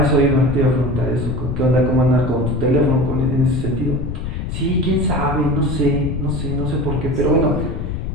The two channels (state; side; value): noise; left; rumble, 4 dB below the sound